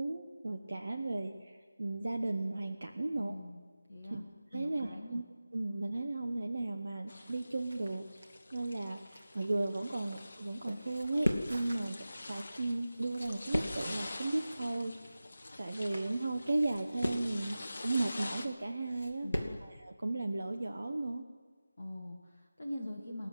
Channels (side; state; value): both; inverted; correlation -0.96